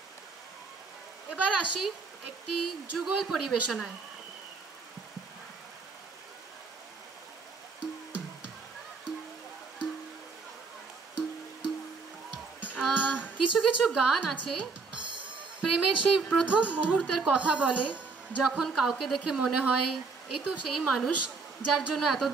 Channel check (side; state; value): left; quieter; 4.4 dB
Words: এবার আসি একটি যুগল পরিবেশনায়। কিছু কিছু গান আছে প্রেমের সেই প্রথম মুহূর্তের কথা বলে, যখন কাউকে দেখে মনে হয় এই তো সেই মানুষ যার জন্য